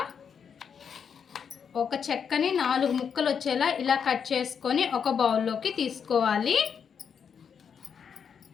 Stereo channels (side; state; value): right; quieter; 7.0 dB